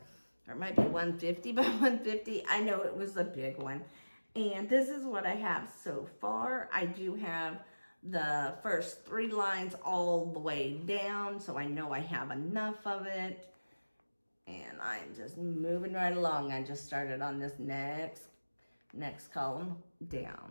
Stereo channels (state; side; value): inverted; both; correlation -1.00